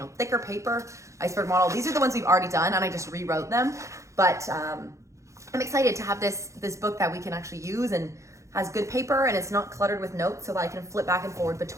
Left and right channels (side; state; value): left; late; 0.15 ms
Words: thicker paper, iceberg model. These are the ones we've already done and I just rewrote them. But I'm excited to have this book that we can actually use and has good paper and it's not cluttered with notes so that I can flip back and forward